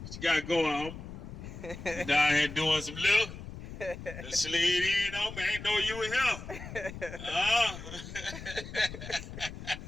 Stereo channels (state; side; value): noise; left; rumble, 11 dB below the sound